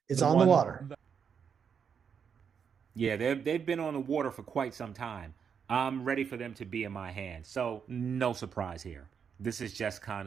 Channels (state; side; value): quieter; left; 7.0 dB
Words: It's on the water. Yeah, they've been on the water for quite some time. I'm ready for them to be in my hands. So no surprise here. This is just